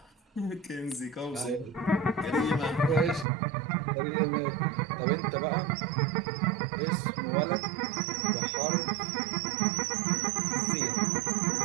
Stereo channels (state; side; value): drops out; left; at 3.2 s